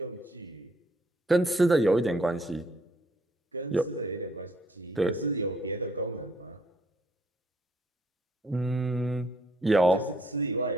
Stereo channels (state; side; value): normal; both; correlation 0.67